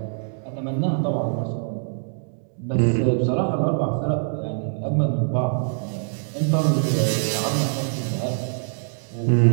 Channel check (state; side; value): silent; left; digital silence